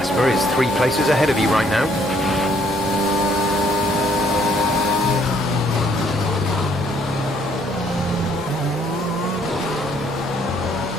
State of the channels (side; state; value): both; normal; correlation 0.65